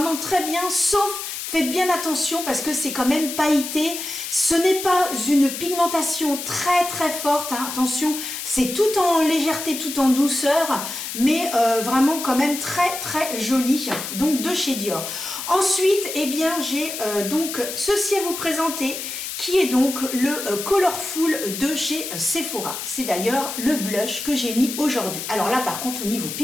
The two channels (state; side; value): noise; left; hiss, 6 dB below the sound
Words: très bien, sauf... Faites bien attention parce que c'est quand même pailleté. Ce n'est pas une pigmentation très très forte. Hein. Attention, c'est tout en légèreté, tout en douceur. Mais vraiment quand même très très joli. Donc de chez Dior. Ensuite, eh bien j'ai donc ceci à vous présenter. Qui est donc le Colorful de chez Sephora. C'est d'ailleurs le blush que j'ai mis aujourd'hui. Alors là par contre au niveau